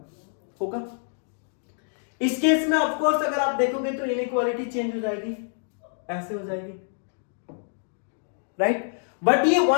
होगा। इस केस में ऑफ कोर्स अगर आप देखोगे तो इनइक्वालिटी चेंज हो जाएगी, ऐसे हो जाएगी, राइट। बट ये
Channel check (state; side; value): silent; right; digital silence